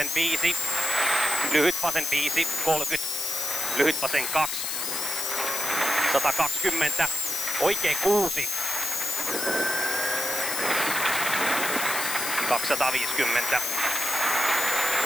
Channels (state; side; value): noise; left; hiss, 2 dB below the sound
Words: 5. Lyhyt vasen 5, 30. Lyhyt vasen 2. 120. Oikee 6. 250.